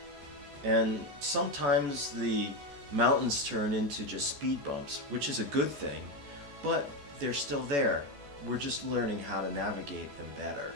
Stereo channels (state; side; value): late; left; 14 ms